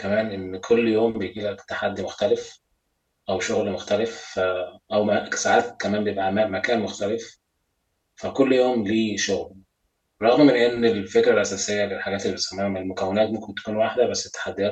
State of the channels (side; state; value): both; identical; correlation 1.00